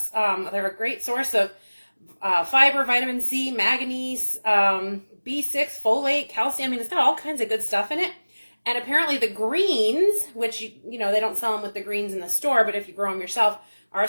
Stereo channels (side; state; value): both; inverted; correlation -1.00